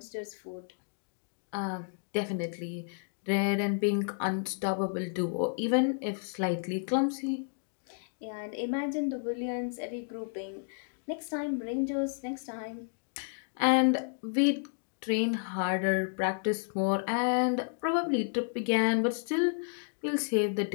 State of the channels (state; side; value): silent; right; digital silence